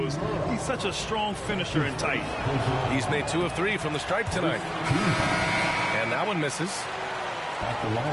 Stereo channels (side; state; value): both; identical; correlation 1.00